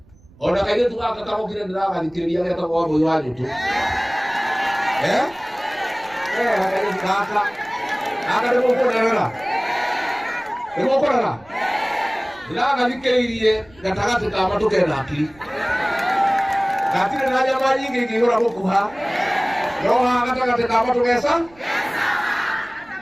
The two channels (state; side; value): noise; right; rumble, 27 dB below the sound